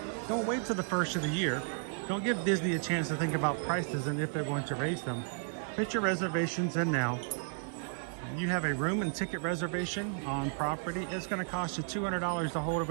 Don't wait till the first of the year. Don't give Disney a chance to think about prices and if they're going to raise them. Put your reservations in now. You have a room and ticket reservation on property, it's going to cost you $200 to hold a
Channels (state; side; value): silent; left; 56 dB below the other